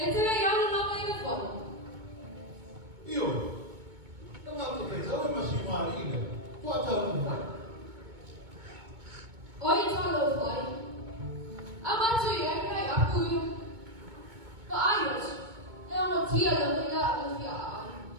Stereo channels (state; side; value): late; left; 2.2 ms